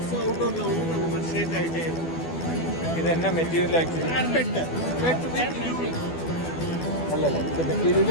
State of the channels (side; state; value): right; late; 12 ms